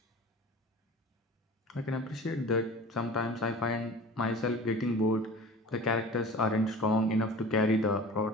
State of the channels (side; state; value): both; normal; correlation 0.40